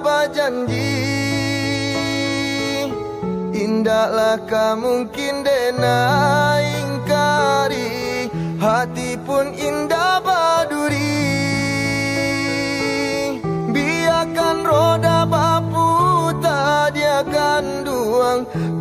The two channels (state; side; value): identical; both; correlation 1.00